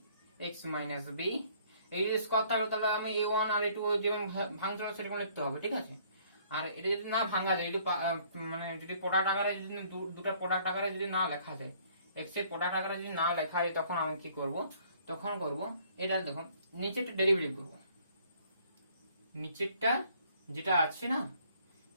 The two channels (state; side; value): inverted; both; correlation -0.61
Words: এক্স মাইনাস বি, এই যদি স্কোয়ার থাকলো, তাহলে আমি a1 আর a2 যেমন ভাঙছিল সেরকম লিখতে হবে। ঠিক আছে, আর এটা যদি না ভাঙা যায়, যদি মানে যদি প্রোডাক্ট আকারে যদি দুটো প্রোডাক্ট আকারে যদি না লেখা যায়, এক্স এর প্রোডাক্ট আকারে যদি না লেখা যায়, তখন আমি কি করব, তখন করব এটা দেখুন, নিচেরটা ডেরিভেটিভ করব, নিচেরটা যেটা আছে না,